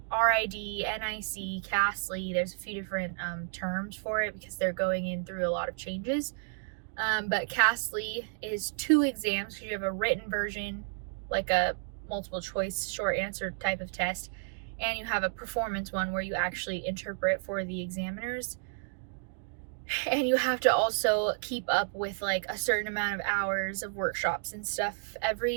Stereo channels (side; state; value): left; silent; digital silence